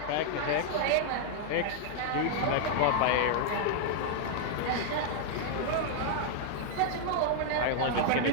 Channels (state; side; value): different; both; correlation -0.01